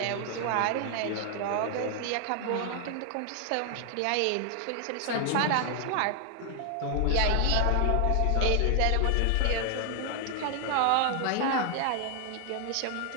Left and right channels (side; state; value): both; different; correlation 0.00